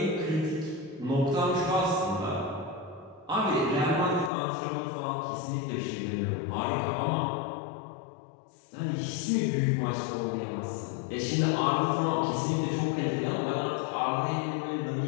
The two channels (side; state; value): right; drops out; at 4.3 s